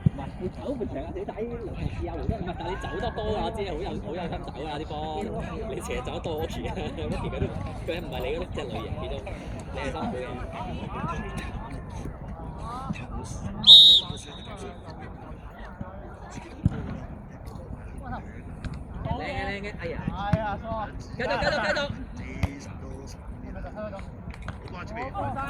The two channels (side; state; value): both; identical; correlation 1.00